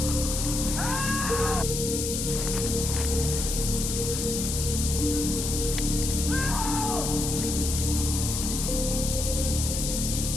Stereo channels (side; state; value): left; noise; hiss, 2 dB below the sound